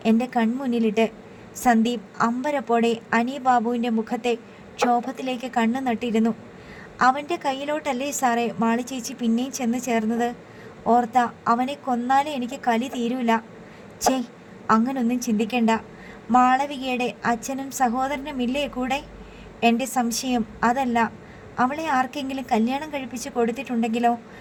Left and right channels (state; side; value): identical; both; correlation 1.00